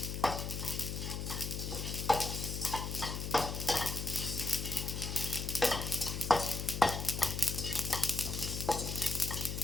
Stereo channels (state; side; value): noise; left; hum, 4 dB below the sound